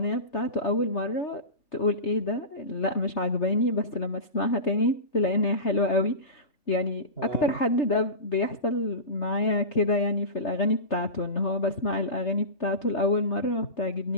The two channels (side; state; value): right; late; 3.3 ms